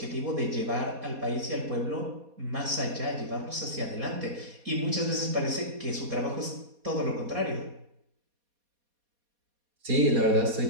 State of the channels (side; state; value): left; late; 4.2 ms